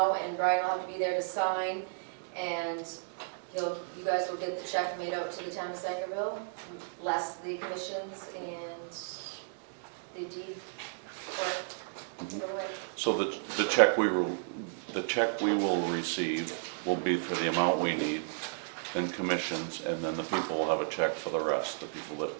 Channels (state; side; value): silent; left; digital silence